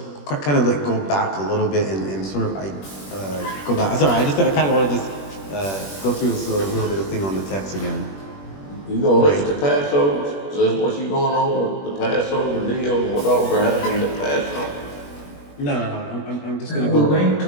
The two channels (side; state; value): right; late; 21 ms